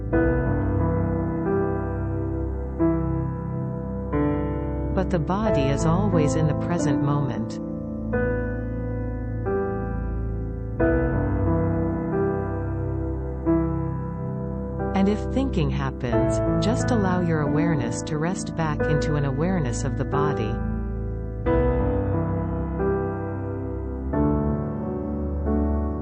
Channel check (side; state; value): both; identical; correlation 1.00